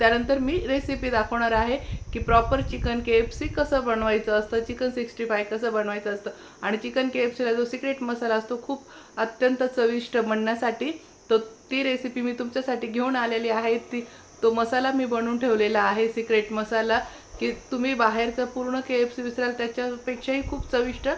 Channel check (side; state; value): both; identical; correlation 1.00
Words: मी रेसिपी दाखवणार आहे की प्रॉपर चिकन KFC कसं बनवायचं असतं, चिकन 65 कसं बनवायचं असतं. आणि चिकन KFCला जो सिक्रेट मसाला असतो खूप अत्यंत चविष्ट बनण्यासाठी, तो ती रेसिपी मी तुमच्यासाठी घेऊन आलेली आहे. तो मसाला मी बनवून ठेवलेला आहे, सिक्रेट मसाला, की तुम्ही बाहेरचं पूर्ण KFC विसराल त्याच्यापेक्षाही खूप चविष्ट